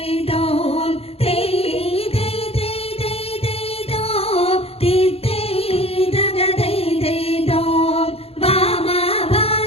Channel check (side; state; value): right; late; 0.29 ms